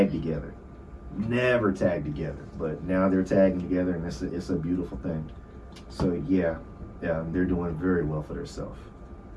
together. But now they're tagging together, and it's a beautiful thing. So yeah, they're doing very well for themselves.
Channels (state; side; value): identical; both; correlation 1.00